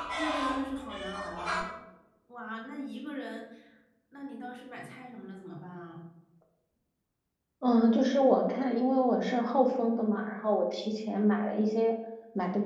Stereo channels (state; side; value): identical; both; correlation 1.00